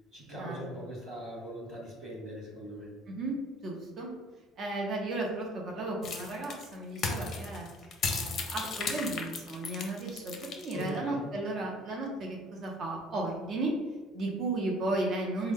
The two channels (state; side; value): normal; both; correlation 0.53